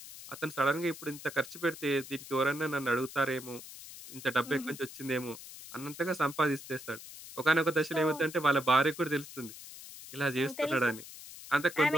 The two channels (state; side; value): noise; left; hiss, 14 dB below the sound